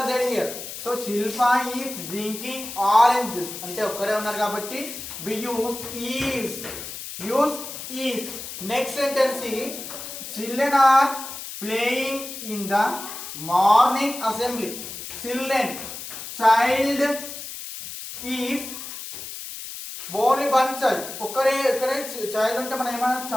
there here. So Shilpa is drinking orange juice. అంటే ఒక్కరే ఉన్నారు కాబట్టి we use is. Next sentence is children are playing in the morning assembly. Child is only one child. ఒక్కరే child ఉంటే మనం ఏమన్నా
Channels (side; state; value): left; noise; hiss, 9 dB below the sound